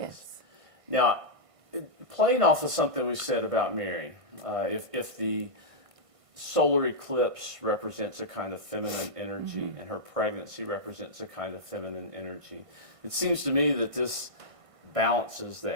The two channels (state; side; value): late; left; 1.5 ms